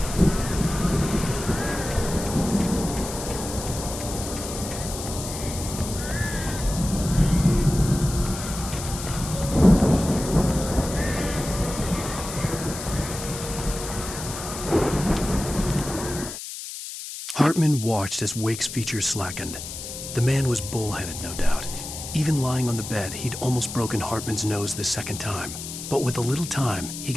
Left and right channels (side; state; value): left; noise; hiss, 9 dB below the sound